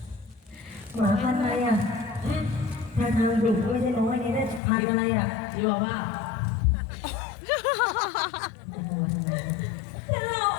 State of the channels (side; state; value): right; drops out; at 4.6 s